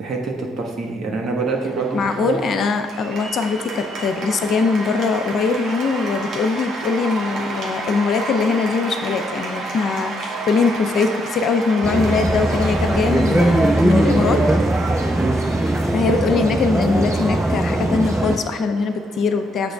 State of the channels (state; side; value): normal; both; correlation 0.75